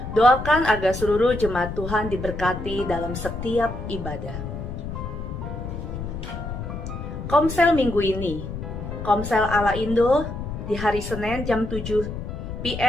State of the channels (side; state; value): left; noise; rumble, 7 dB below the sound